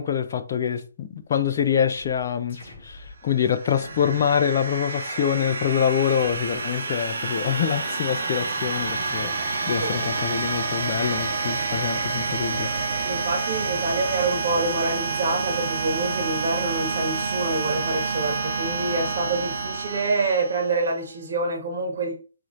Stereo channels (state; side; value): inverted; both; correlation -0.56